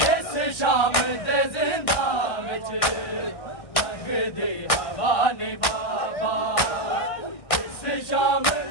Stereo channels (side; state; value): right; late; 1.6 ms